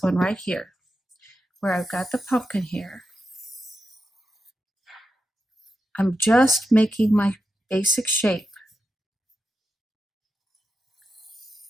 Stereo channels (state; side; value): normal; both; correlation 0.88